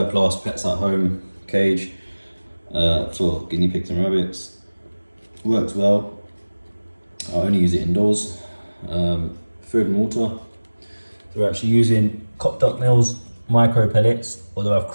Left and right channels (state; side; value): inverted; both; correlation -1.00